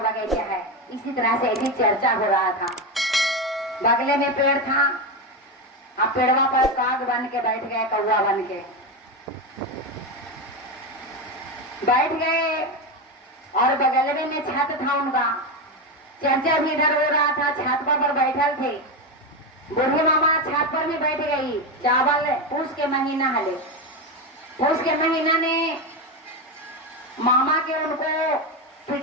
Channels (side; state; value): both; normal; correlation 0.14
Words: है, इसी तरह से ऐसी चर्चा हो रहा था। बगले में पेड़ था, आप पेड़वा पर काग बन के बैठ गए, कौवा बन के बैठ गए, और बगल में छत था उनका, चर्चा भी इधर हो रहा था, छत पर बैठल थे। बूढ़े मामा छत पर भी बैठ गई। चावल पूस के महीना हले, पूस के महीना ने मामा के उनको